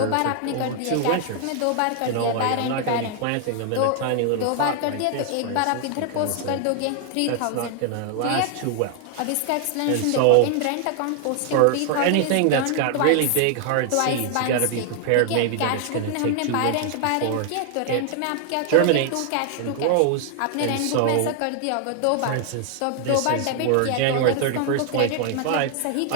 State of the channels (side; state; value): both; different; correlation 0.00